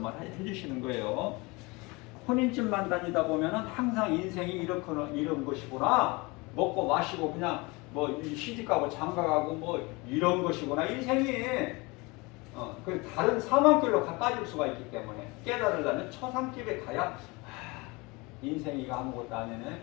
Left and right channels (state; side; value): quieter; right; 25.6 dB